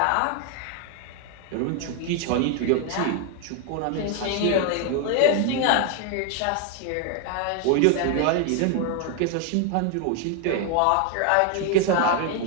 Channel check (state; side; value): different; both; correlation 0.00